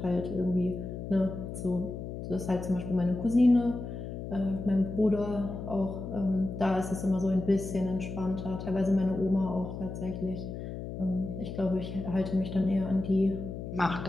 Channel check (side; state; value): left; noise; hum, 7 dB below the sound